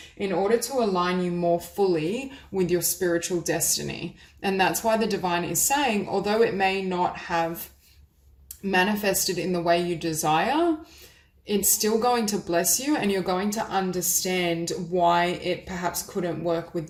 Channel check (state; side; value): identical; both; correlation 1.00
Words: in order to align you more fully with your spiritual destiny. And that's why the divine is saying, although it may not have manifested in the way you desire, it's still going to bless you, and you're going to understand why it perhaps couldn't work with